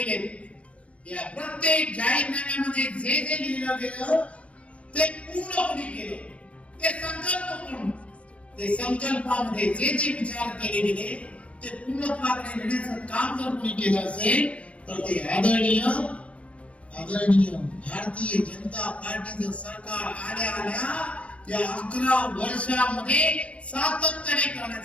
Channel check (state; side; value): late; right; 0.063 ms